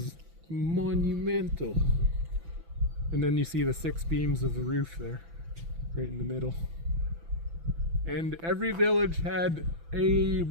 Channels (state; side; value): late; left; 6.0 ms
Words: monumental. And then you see the 6 beams of the roof there, right in the middle. And every village had a